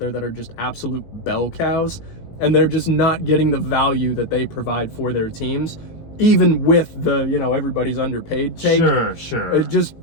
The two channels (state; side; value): late; right; 18 ms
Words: that are just absolute bell cows, and they're just not getting the value that they provide for their teams, even with the, everybody's underpaid take. Sure. Just